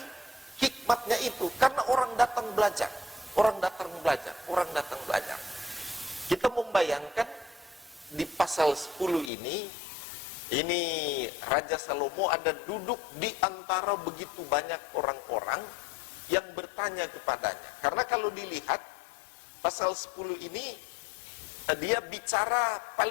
hikmatnya itu. Karena orang datang belajar. Orang datang belajar. Orang datang belajar. Kita membayangkan di pasal 10 ini Raja Salomo ada duduk di antara begitu banyak orang-orang yang bertanya kepadanya. Karena kalau dilihat pasal 10 ini dia bicara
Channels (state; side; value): drops out; right; at 9.3 s